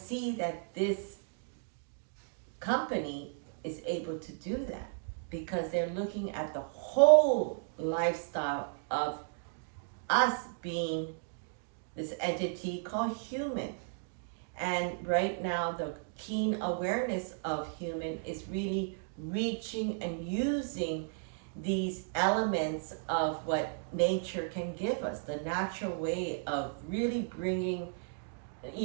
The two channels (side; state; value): left; silent; digital silence